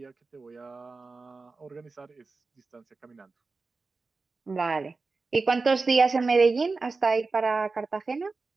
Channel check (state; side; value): quieter; left; 4.0 dB